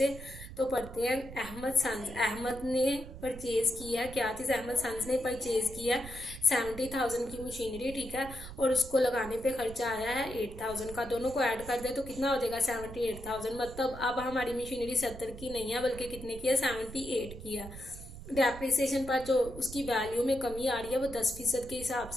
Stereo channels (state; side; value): noise; right; rumble, 13 dB below the sound